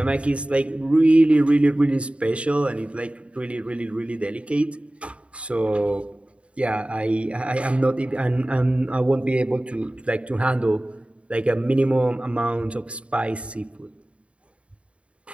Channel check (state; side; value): late; left; 0.061 ms